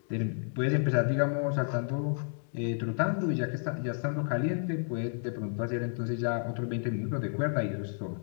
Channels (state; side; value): silent; right; digital silence